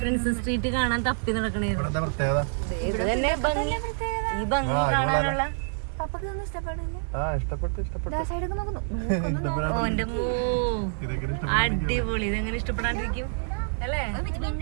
പ്രിൻസസ് സ്ട്രീറ്റ് കാണാൻ തപ്പി നടക്കണേരുന്നു. ഇത് തന്നെ ഭംഗി. ഈ ഭംഗി കാണാനുള്ള ഓന്റെ മോ അടിപൊളി. ഇതെങ്ങനെ ഇഷ്ടപ്പെടാണ്ടിരിക്കും അല്ലേ?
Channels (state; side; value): silent; left; digital silence